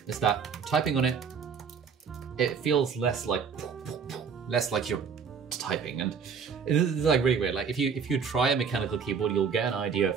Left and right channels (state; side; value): quieter; left; 6.2 dB